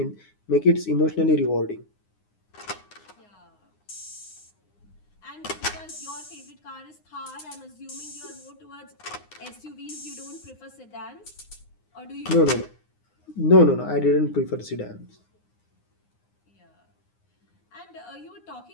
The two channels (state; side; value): late; right; 9.7 ms